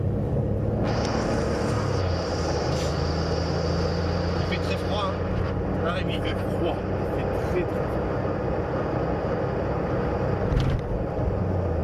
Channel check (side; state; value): both; identical; correlation 1.00